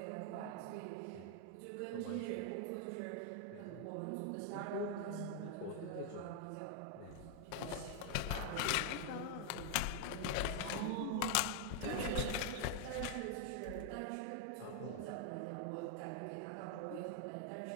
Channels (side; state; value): both; different; correlation 0.00